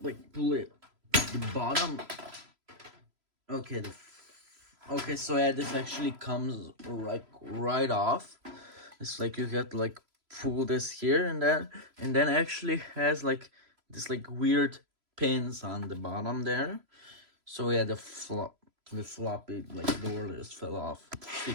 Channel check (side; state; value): left; late; 3.0 ms